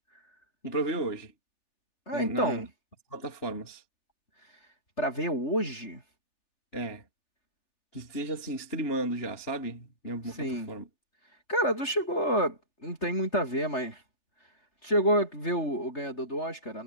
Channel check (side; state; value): right; late; 3.3 ms